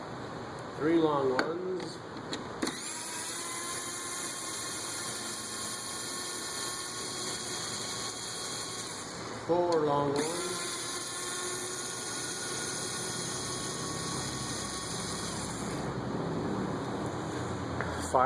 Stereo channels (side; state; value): both; identical; correlation 1.00